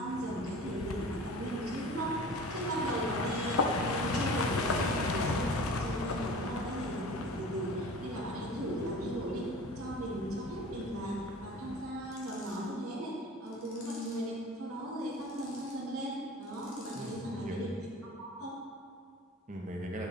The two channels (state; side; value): normal; both; correlation 0.40